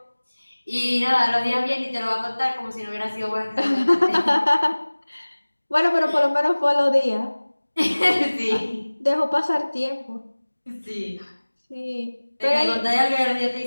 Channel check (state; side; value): inverted; both; correlation -1.00